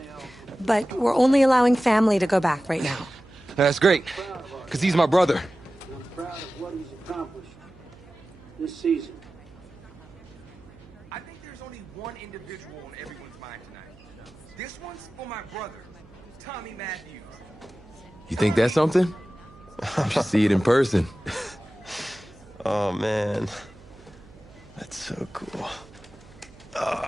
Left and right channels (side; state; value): right; noise; hum, 23 dB below the sound